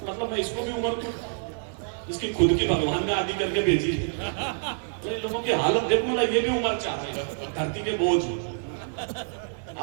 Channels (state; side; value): silent; left; 60 dB below the other